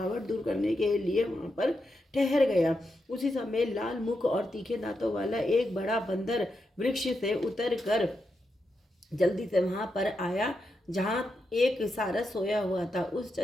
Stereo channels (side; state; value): both; normal; correlation 0.85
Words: दूर करने के लिए वहां पर ठहर गया। उसी समय लाल मुख और तीखे दांतों वाला एक बड़ा बंदर वृक्ष से उतर कर जल्दी से वहां पर आया जहां एक सारस सोया हुआ था। उस